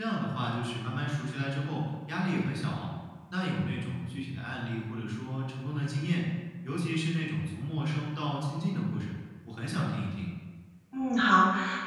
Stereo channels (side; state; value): both; identical; correlation 1.00